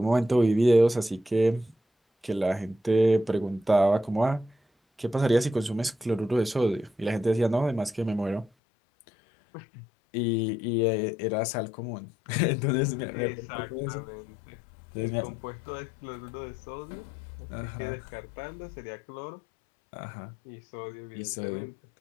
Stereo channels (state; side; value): drops out; right; at 8.5 s